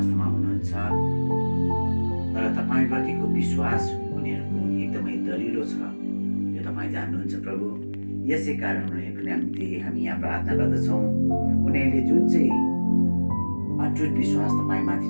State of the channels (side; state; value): both; inverted; correlation -1.00